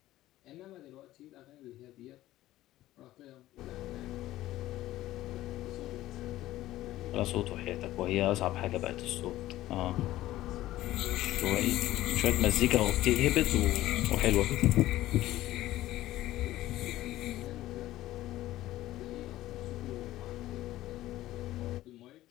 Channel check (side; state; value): right; quieter; 15.4 dB